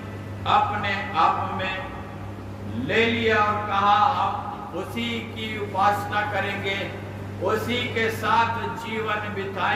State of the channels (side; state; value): both; identical; correlation 1.00